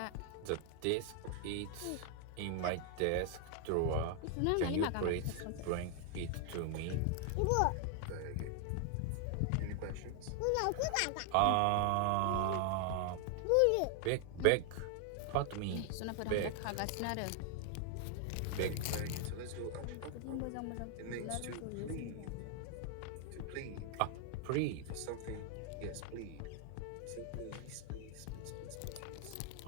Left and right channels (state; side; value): different; both; correlation 0.00